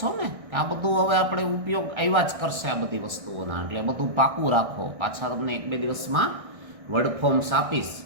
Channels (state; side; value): late; left; 1.6 ms